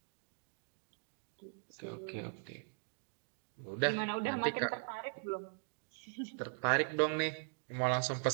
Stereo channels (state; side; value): silent; left; digital silence